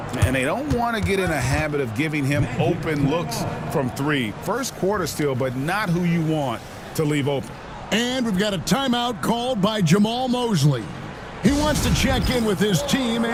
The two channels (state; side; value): identical; both; correlation 1.00